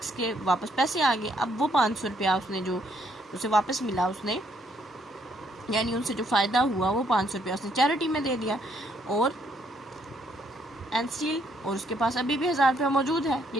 کے واپس پیسے آ گئے. اب وہ 500 روپیہ اس نے جو اسے واپس ملا, اس نے یعنی ان سے جو فائدہ ہوا وہ 500 روپیہ اس نے چیریٹی میں دے دیا. اور اور اس کے پاس ابھی بھی 1000 روپیہ موجود ہے.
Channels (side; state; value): both; normal; correlation 0.70